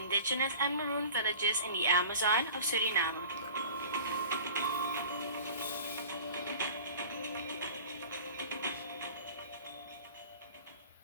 and maroon villages in the Amazon of Suriname.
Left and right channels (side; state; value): both; inverted; correlation -0.42